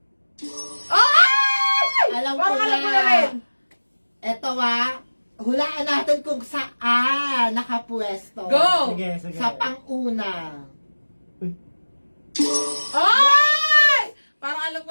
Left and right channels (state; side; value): inverted; both; correlation -1.00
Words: Oh! Ay! Alam ko Parang alam ko na. na rin. Eto hulaan natin kung saan nakapwesto. Go! Sige. Sa pang-una. Ay! Parang alam ko